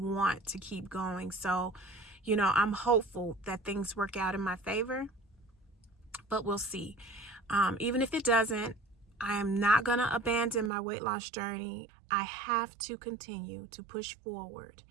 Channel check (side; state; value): left; drops out; at 10.7 s